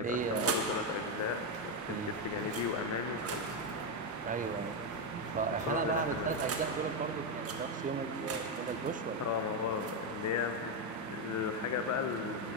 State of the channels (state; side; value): normal; both; correlation 0.06